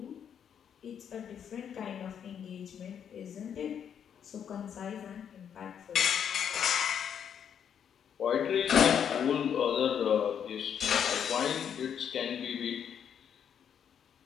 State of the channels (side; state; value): right; quieter; 8.3 dB